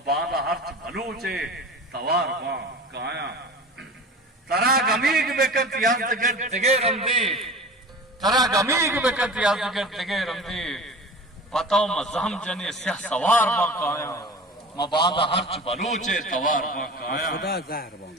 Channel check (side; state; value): both; normal; correlation 0.36